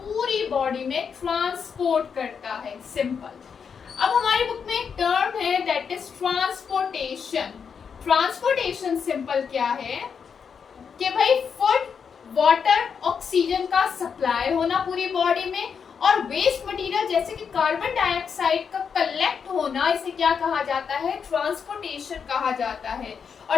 बॉडी में ट्रांसपोर्ट करता है। सिंपल। अब हमारी बुक में एक टर्म है that is transportation. Transportation simple क्या है कि भाई फूड, वाटर, ऑक्सीजन का सप्लाई होना पूरी बॉडी में और वेस्ट मटेरियल जैसे कि कार्बन डाइऑक्साइड का कलेक्ट होना, इसे क्या कहा जाता है? ट्रांसपोर्टेशन कहा जाता है।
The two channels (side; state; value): right; quieter; 6.5 dB